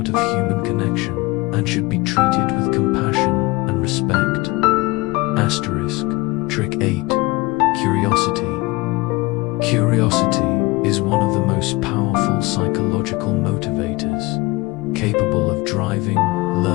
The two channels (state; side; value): quieter; right; 22.7 dB